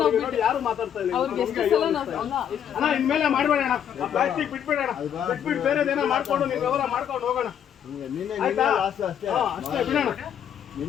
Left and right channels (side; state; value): right; quieter; 9.2 dB